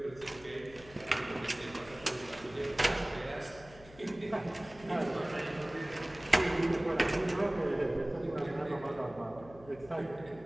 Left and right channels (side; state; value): left; noise; hum, 20 dB below the sound